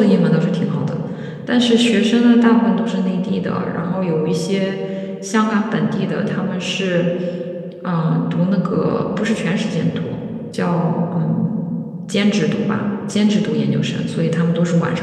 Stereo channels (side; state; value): both; identical; correlation 1.00